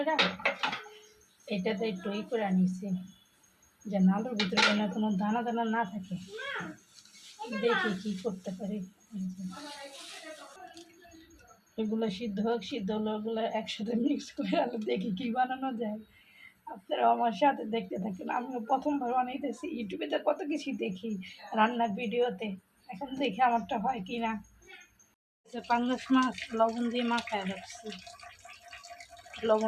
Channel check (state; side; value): identical; both; correlation 1.00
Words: এটাতে একটু করে নিছি, যেন আলুর ভিতরে যেন কোনো দানা দানা না থাকে। দেখি কি করতে পারি। এগুলো সিদ্ধ হোক, সিদ্ধ হলো ওগুলো একসাথে মিক্স করে আলু দেখি কি বানানো যায়। আপনারা আমার সাথে দেখতে থাকেন। আমিও প্রথমবার বানাইতেছি, ইউটিউবে তো কত কিছু দেখি রান্নার ভিডিওতে, এখন দেখি আমারটা হয় কি না। পাঙ্গাস মাছ লবণ দিয়ে মাখায় রাখছি,